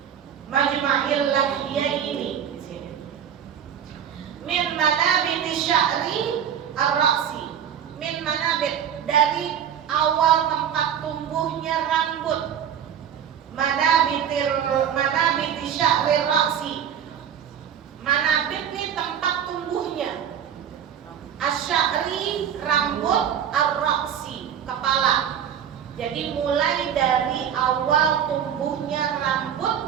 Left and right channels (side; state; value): left; quieter; 8.9 dB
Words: lahyaini di sini. Min manabiti sya'ri ar-ra'si. Min manabit, dari awal tempat tumbuhnya rambut. Manabiti sya'ri ra'si. Manabit ini tempat tumbuhnya. Asy'ari rambut, ar-ra'si kepala. Jadi mulai dari awal tumbuhnya